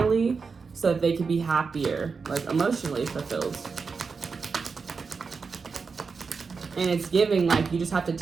so that they can be happier, like emotionally fulfilled. And it's giving like you just have to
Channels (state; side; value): quieter; left; 5.0 dB